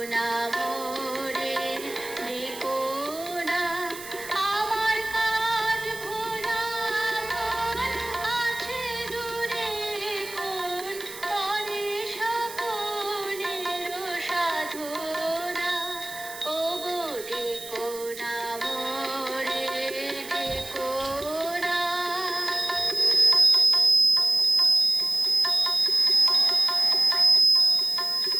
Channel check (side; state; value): right; noise; hiss, 13 dB below the sound